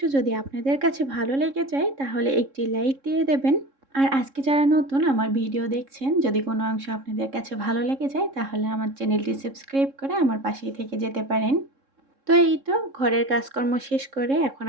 যদি আপনাদের কাছে ভালো লেগে যায় তাহলে একটি লাইক দিয়ে দেবেন। আর আজকে যারা নতুন আমার ভিডিও দেখছেন, যদি কোনো অংশ আপনাদের কাছে ভালো লেগে যায় তাহলে আমার চ্যানেলটি সাবস্ক্রাইব করে আমার পাশেই থেকে যেতে পারেন। তো এই তো ঘরের কাজকর্ম শেষ করে এখন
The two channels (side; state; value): left; late; 3.7 ms